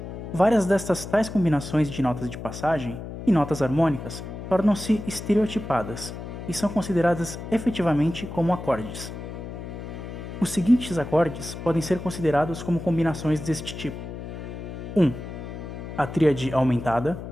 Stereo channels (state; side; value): noise; left; hum, 9 dB below the sound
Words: várias destas tais combinações de notas de passagem e notas harmônicas tornam-se estereotipadas e são consideradas efetivamente como acordes. Os seguintes acordes podem ser considerados como combinações deste tipo: 1. A tríade aumentada.